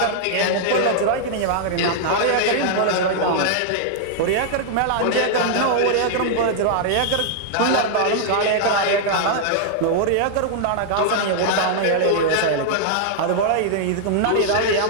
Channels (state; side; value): different; both; correlation -0.01